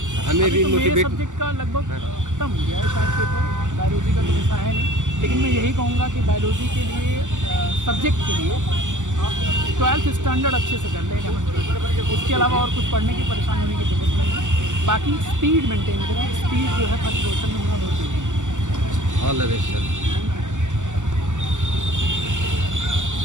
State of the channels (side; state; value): left; late; 0.86 ms